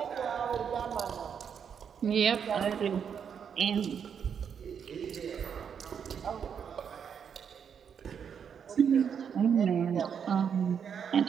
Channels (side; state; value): left; quieter; 7.4 dB